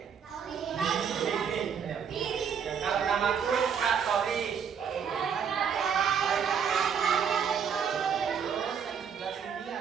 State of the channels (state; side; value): quieter; left; 7.2 dB